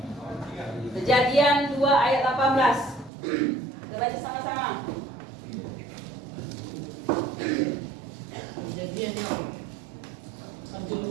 Kejadian 2 ayat 18. Kita baca sama-sama. Kejadian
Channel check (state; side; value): drops out; left; at 3.1 s